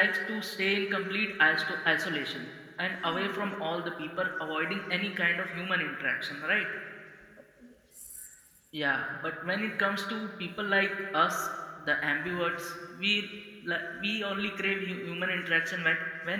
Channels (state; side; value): identical; both; correlation 1.00